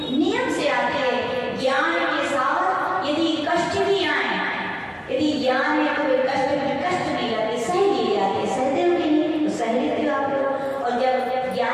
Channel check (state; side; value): identical; both; correlation 1.00